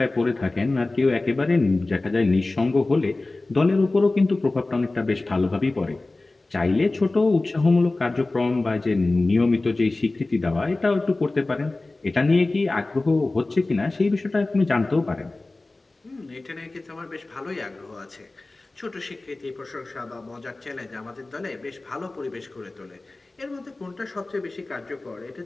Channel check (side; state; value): right; quieter; 3.1 dB